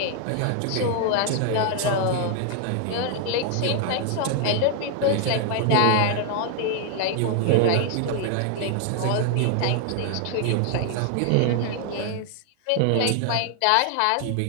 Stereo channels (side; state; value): both; different; correlation 0.00